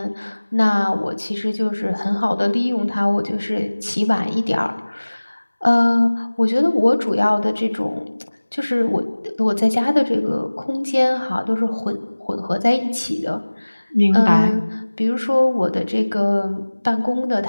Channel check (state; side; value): inverted; both; correlation -1.00